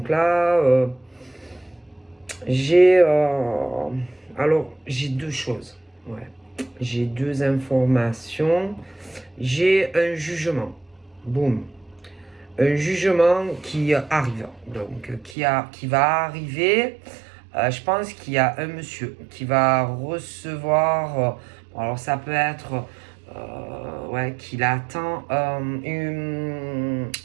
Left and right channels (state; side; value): drops out; left; at 15.4 s